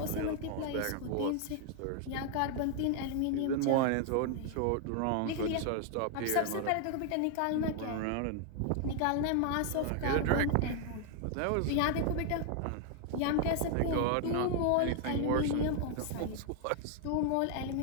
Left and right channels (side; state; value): both; different; correlation 0.00